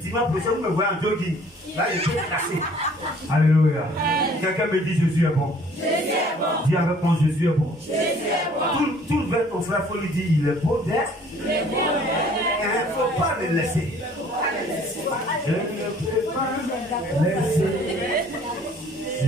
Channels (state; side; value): normal; both; correlation 0.55